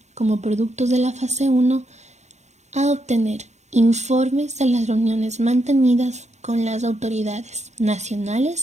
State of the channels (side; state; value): left; late; 0.33 ms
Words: como productos de la fase 1 a obtener informes de las reuniones mantenidas con las autoridades